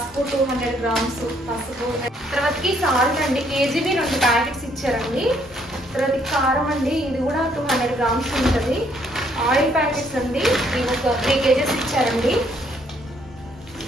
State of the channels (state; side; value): normal; both; correlation 0.68